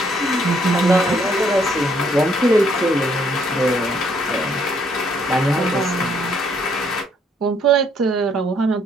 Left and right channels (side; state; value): both; normal; correlation 0.68